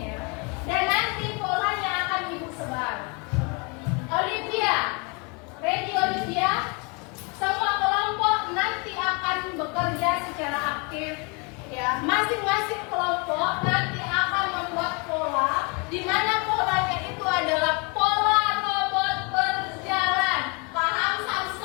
ya. Dan nanti polanya akan ibu sebar. Olivia, ready Olivia? Semua kelompok nanti akan bekerja secara aktif. Ya, masing-masing kelompok nanti akan membuat pola, di mana polanya itu adalah pola robot berjalan. Paham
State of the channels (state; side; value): quieter; right; 31.2 dB